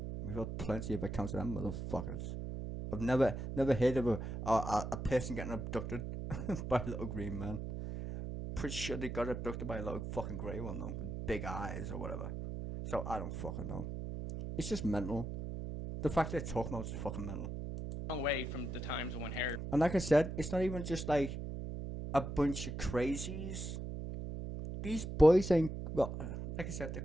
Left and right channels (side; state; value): right; noise; hum, 5 dB below the sound